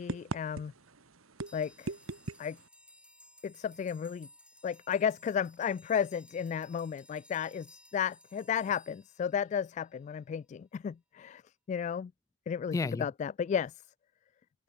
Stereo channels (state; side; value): quieter; right; 6.6 dB